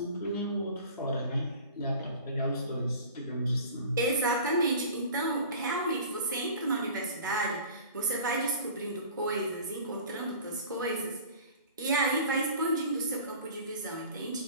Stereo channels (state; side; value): inverted; both; correlation -0.42